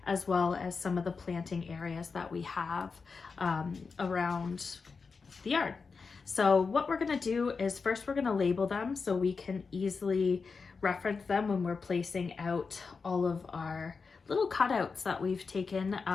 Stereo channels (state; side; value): quieter; right; 4.9 dB